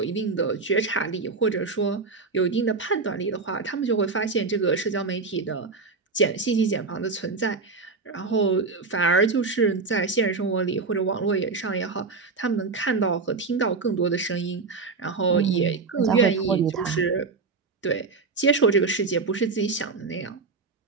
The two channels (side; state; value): left; quieter; 4.3 dB